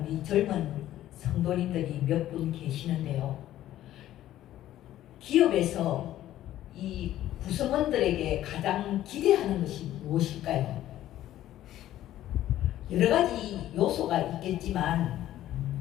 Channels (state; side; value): quieter; right; 13.2 dB